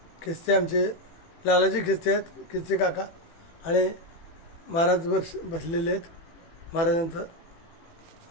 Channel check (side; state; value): right; late; 18 ms